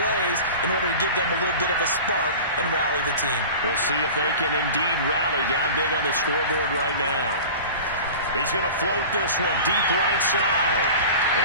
in order to give them a little bit of a spark and rally the team. We'll see if they can indeed rally down big on the scoreboard right now. He's going to float this one deep right side.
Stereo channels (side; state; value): both; inverted; correlation -0.36